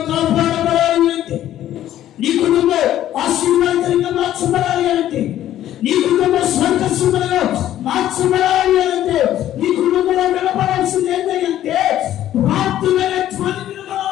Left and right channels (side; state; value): right; quieter; 12.4 dB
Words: కాపాడబడాలి అంటే, నీ కుటుంబం ఆశీర్వాదకరంగా మార్చబడాలి అంటే, నీ కుటుంబం సంతోషంగా మార్చబడాలి అంటే, నీ కుటుంబంలో వినపడాల్సింది ఏంటంటే ప్రార్థనలే ధ్వని